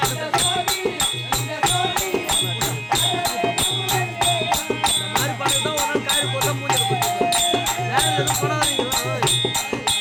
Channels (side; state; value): both; identical; correlation 1.00